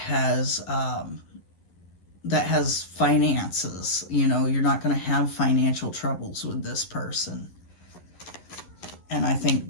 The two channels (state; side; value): late; right; 11 ms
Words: finances. You know, you're not going to have financial troubles with this person. And I think